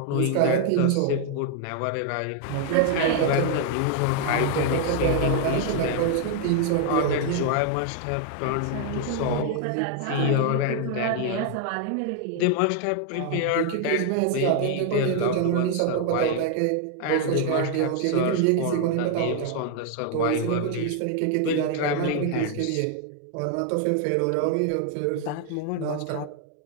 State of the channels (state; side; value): different; both; correlation 0.00